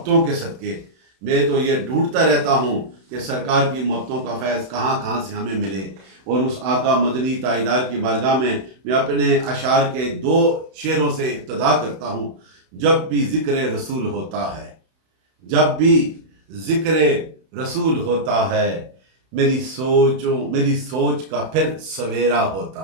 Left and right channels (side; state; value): left; late; 31 ms